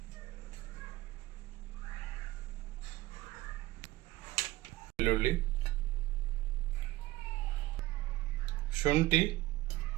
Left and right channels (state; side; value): quieter; left; 18.1 dB